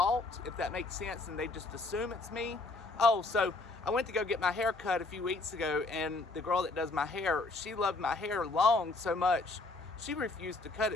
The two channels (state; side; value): quieter; right; 3.3 dB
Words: if that makes sense, and they just assume it's me. Oh, so I went to go get my hair cut a few weeks ago, and the girl that does my hair, she loved my hair long so much, she refused to cut